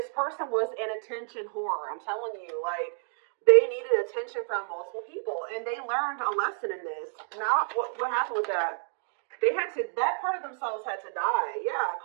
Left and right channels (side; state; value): left; silent; 58 dB below the other